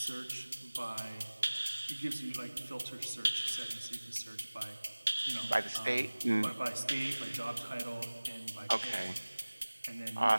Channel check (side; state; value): both; inverted; correlation -1.00